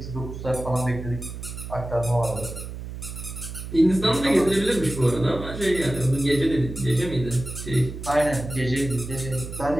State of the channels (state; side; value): noise; right; hum, 9 dB below the sound